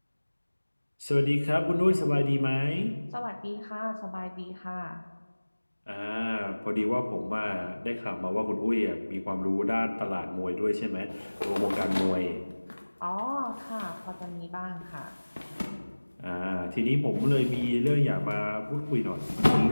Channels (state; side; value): inverted; both; correlation -1.00